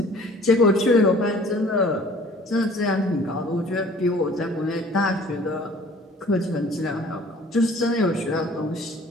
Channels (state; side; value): normal; both; correlation 0.51